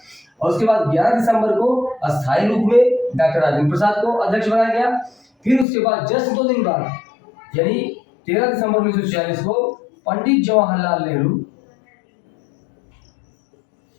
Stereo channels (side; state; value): right; drops out; at 5.7 s